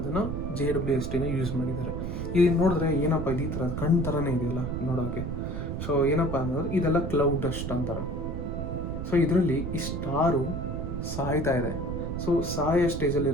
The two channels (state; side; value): noise; right; rumble, 4 dB below the sound